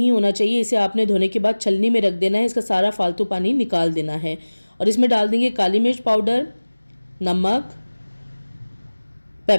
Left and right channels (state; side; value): inverted; both; correlation -1.00